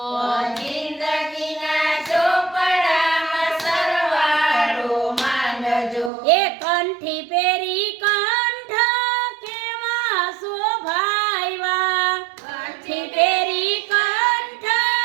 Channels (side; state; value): left; drops out; at 6.1 s